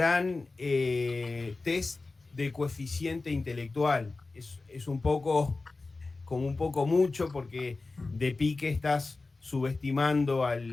test de coeficiente intelectual. Es un poco, como un poco mucho, porque de pique estás subestimando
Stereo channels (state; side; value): quieter; right; 3.6 dB